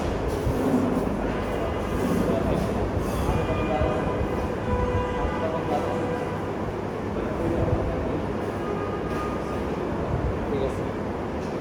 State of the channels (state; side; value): identical; both; correlation 1.00